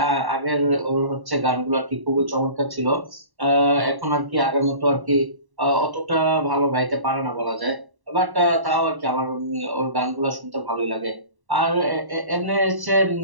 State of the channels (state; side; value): late; left; 1.1 ms